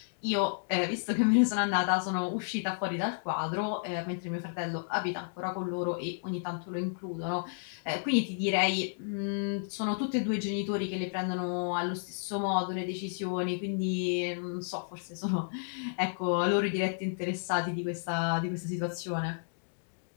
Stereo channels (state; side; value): silent; right; digital silence